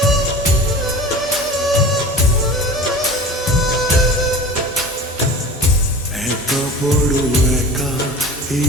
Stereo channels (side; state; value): both; normal; correlation 0.38